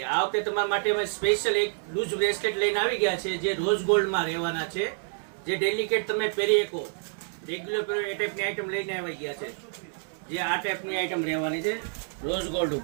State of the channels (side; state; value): left; silent; 59 dB below the other